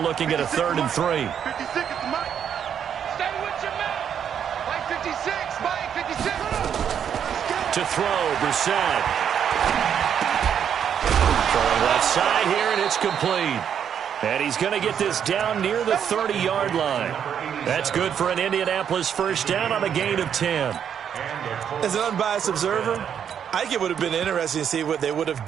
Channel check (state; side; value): quieter; left; 8.4 dB